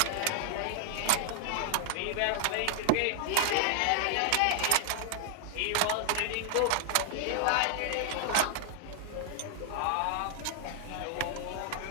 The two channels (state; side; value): different; both; correlation 0.00